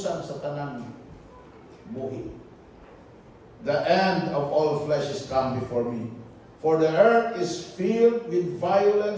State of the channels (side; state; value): both; identical; correlation 1.00